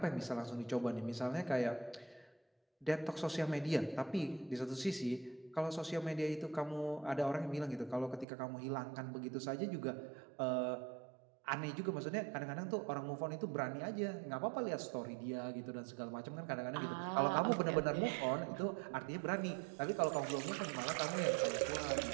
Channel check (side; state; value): left; drops out; at 8.2 s